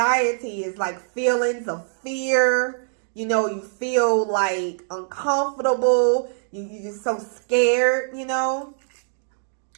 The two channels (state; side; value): silent; left; digital silence